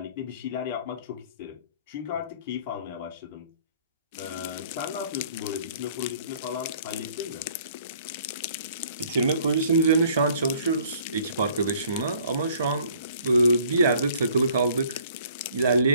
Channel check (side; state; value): both; inverted; correlation -0.57